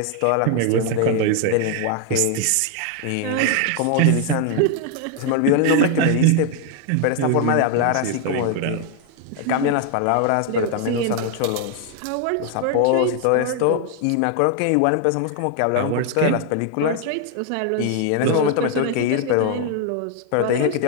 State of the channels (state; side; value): different; both; correlation 0.00